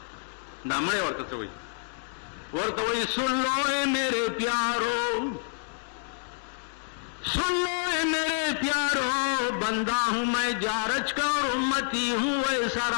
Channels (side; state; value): right; silent; 59 dB below the other